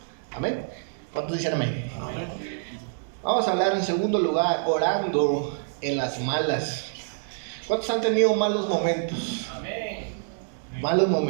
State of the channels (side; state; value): left; silent; digital silence